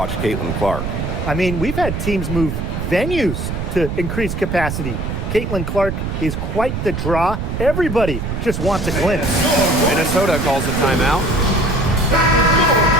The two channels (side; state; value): right; noise; rumble, 4 dB below the sound